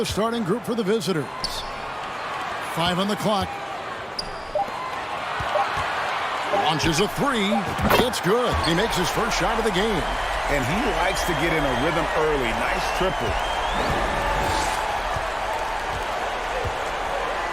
starting group for the visitors. 5 on the clock. Launches a three. It's good. He makes his first shot of the game. And he likes to get in a rhythm early. Nice triple.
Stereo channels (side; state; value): both; identical; correlation 1.00